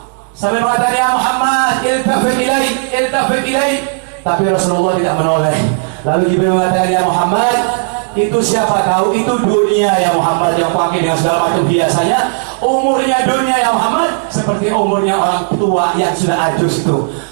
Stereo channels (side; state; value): left; silent; digital silence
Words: Sampai mengatakan, ya Muhammad, iltafit ilaik. Tapi Rasulullah tidak menoleh. Lalu Jibril mengatakan, ya Muhammad, itu siapa tahu itu dunia ya Muhammad, yang pakai dengan segala macam hiasannya. Umurnya dunia ya Muhammad seperti umurnya orang tua yang sudah ajus itu.